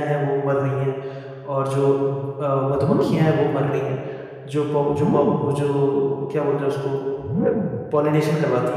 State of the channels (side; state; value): both; identical; correlation 1.00